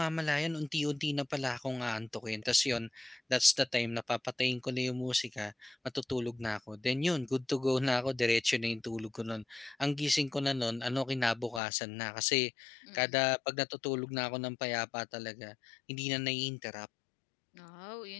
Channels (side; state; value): right; drops out; at 11.6 s